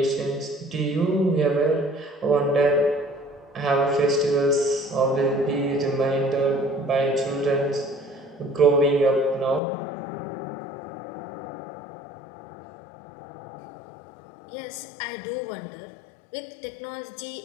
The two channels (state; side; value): drops out; right; at 9.6 s